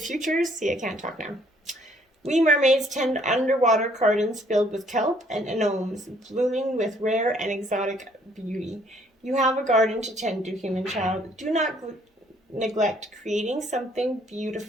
See, I can't talk now. We mermaids tend underwater gardens filled with kelp and anemones, blooming with rare and exotic beauty. You have a garden to tend to, human child. Do not neglect creating something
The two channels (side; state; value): both; normal; correlation 0.64